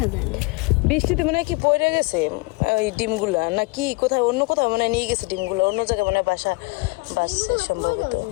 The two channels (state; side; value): quieter; right; 26.1 dB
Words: যায় না, বৃষ্টিতে মনে হয় কি পড়ে গেছে ওই ডিমগুলা, না কি কোথায় অন্য কোথাও মনে হয় নিয়ে গেছে ডিমগুলো, অন্য জায়গায় মনে হয় বাসা বাসছে সম্ভবত।